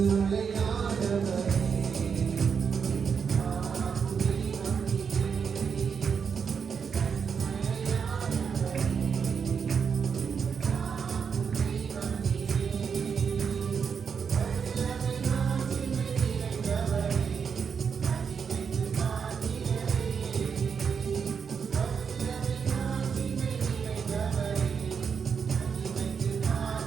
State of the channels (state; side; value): quieter; left; 6.4 dB